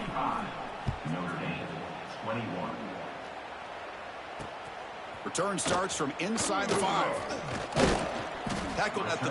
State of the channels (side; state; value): both; identical; correlation 1.00